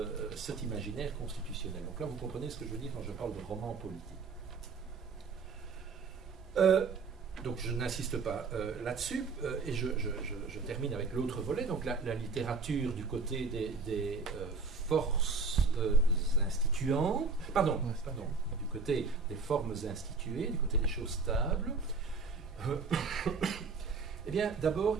cet imaginaire constitutionnel. Donc là, vous comprenez ce que je veux dire quand je parle de roman politique. Donc je n'insiste pas là-dessus, et je termine avec l'autre volet, donc la littérature du côté des forces instituantes, du côté des formes instituées, du côté des choses stables. Eh bien, d'abord,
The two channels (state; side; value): quieter; left; 4.4 dB